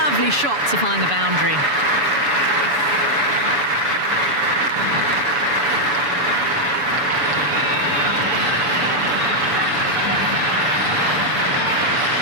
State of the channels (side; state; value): left; late; 7.0 ms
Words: shot to find the boundary.